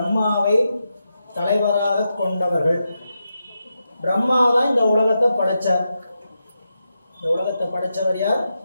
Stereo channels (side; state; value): both; inverted; correlation -0.87